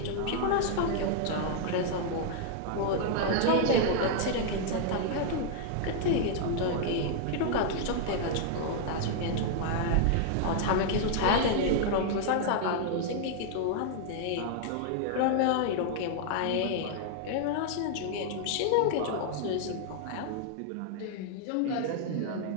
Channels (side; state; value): both; different; correlation -0.01